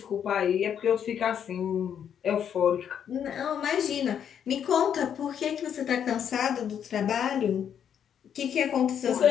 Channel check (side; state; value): right; quieter; 8.6 dB